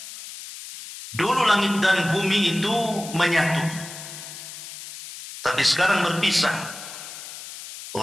dulu langit dan bumi itu menyatu, tapi sekarang berpisah.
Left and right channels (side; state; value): left; noise; hiss, 12 dB below the sound